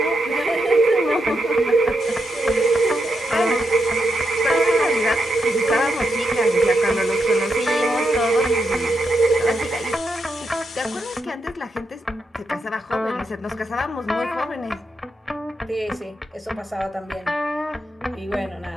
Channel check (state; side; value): normal; both; correlation 0.83